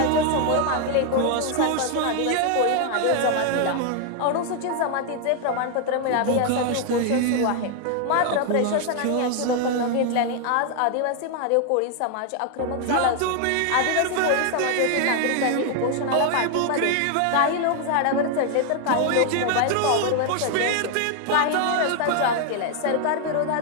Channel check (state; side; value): different; both; correlation 0.00